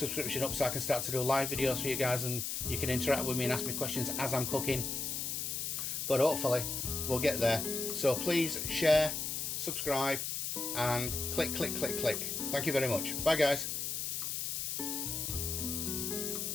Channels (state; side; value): noise; left; hiss, 2 dB below the sound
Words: up so I can start to do live videos for you guys, and you can interact with me and ask me questions as I'm cooking. But hopefully we'll get there. So please share, subscribe, and click. Thank you very much. Bye guys.